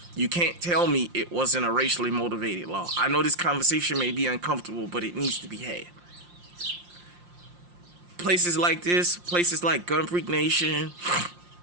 You can't tell me it wasn't a racially motivated law. I know this conversation may be uncomfortable, but it needs to be had. Places like this, places like Gun Freak Nation,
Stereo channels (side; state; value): left; late; 5.7 ms